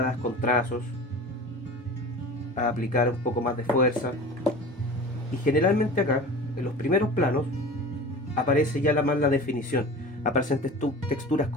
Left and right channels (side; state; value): both; normal; correlation 0.37